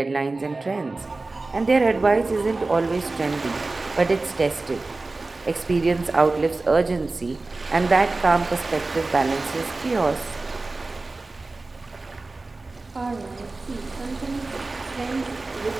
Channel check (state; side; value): quieter; left; 3.4 dB